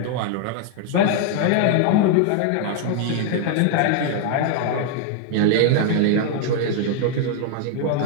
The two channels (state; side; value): different; both; correlation 0.00